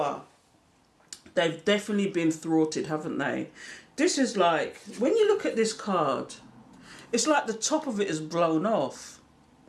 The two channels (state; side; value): identical; both; correlation 1.00